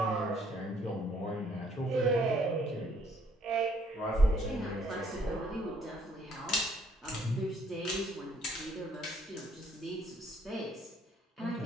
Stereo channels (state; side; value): normal; both; correlation 0.65